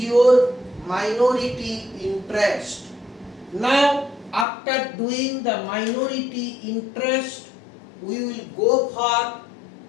minority interest. Now after doing the minority interest, we will go for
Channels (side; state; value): right; drops out; at 4.5 s